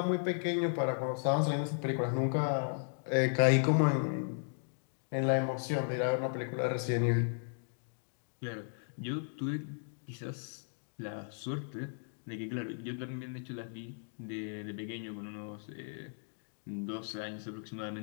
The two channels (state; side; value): silent; right; digital silence